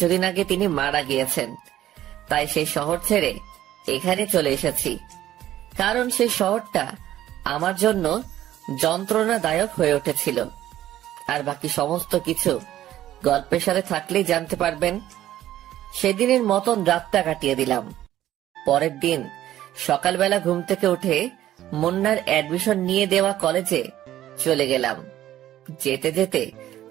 আগে তিনি মারা গিয়েছেন। তাই সেই শহর ছেড়ে এখানে চলে এসেছি, কারণ সেই শহরটা আমার জন্য যন্ত্রণাদায়ক হয়ে উঠেছিল। আর বাকি সমস্ত কিছু গল্পের সাথে থাকলেই জানতে পারবেন। সেদিনের মতন রাতটা কাটিয়ে দিলাম। পরের দিন সকালবেলা ঘুম থেকে উঠে মুন্নার অ্যাডমিশন নিয়ে দেওয়া কলেজে চলে গেলাম। যেতে যেতে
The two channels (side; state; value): left; quieter; 13.1 dB